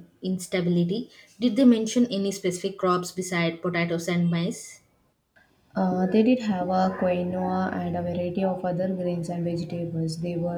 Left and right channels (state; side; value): identical; both; correlation 1.00